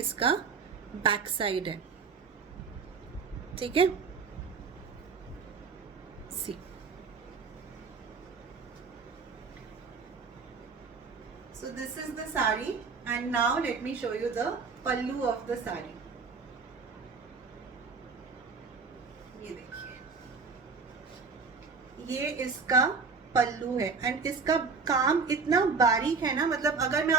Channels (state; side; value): quieter; left; 5.0 dB